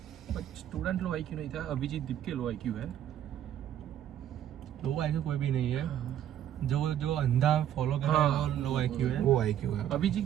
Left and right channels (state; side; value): quieter; left; 10.7 dB